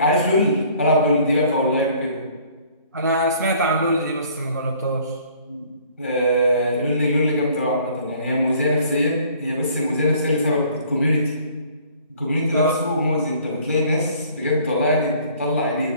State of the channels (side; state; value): both; inverted; correlation -0.56